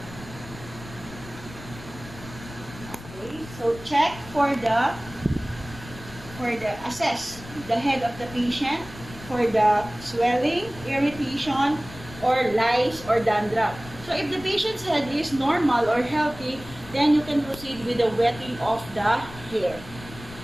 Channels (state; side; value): noise; left; rumble, 16 dB below the sound